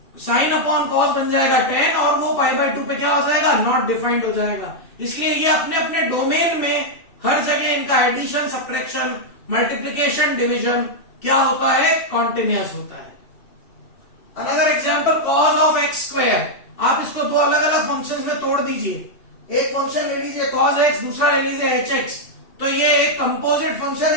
sin अपॉन cos बन जाएगा 10 और वो π/2 पे क्या हो जाएगा, नॉट डिफाइंड हो जाएगा। इसलिए ये अपने अपने डोमेन में हर जगह इनका एडिशन, सब्ट्रैक्शन, मल्टीप्लिकेशन, डिवीजन क्या होता है, कॉन्टिन्यूअस होता है। Another example cos of x square, आप इसको दो अलग अलग फंक्शंस में तोड़ दीजिए। एक फंक्शन ले लीजिए cos x, दूसरा ले लीजिए hx, तो ये एक कंपोजिट फंक्शन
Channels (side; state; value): right; late; 2.7 ms